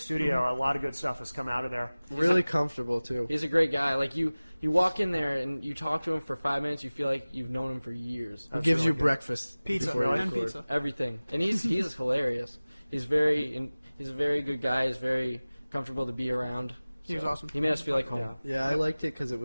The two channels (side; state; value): both; inverted; correlation -0.99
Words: A lot of good stuff has come out of there. Really comfortable too. He's a great guy. Like you walk in there and you talk to him for 5 minutes, you feel like you've known him for years. He That's gives really you good. breakfast, Pizza before you and record. pizza. Everything, and he's hilarious. He's a very good guy. He's very comfortable to be around. He was awesome. He made us feel like home. Yeah. Yeah, I liked it because it